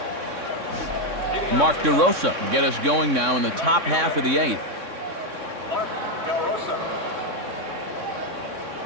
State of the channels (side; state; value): left; late; 3.6 ms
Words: Mark DeRosa will get us going now in the top half of the 8th.